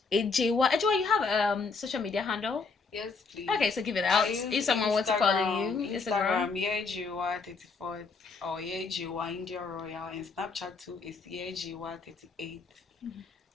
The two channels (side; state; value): right; quieter; 4.6 dB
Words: Ejewa. Ejewa, you have a social media handle? Yes, please. Okay, so give it out. If someone wants to follow you, Instagram, Ejewa34 or Ejewa India Royal, and Snapchat too is Ejewa38.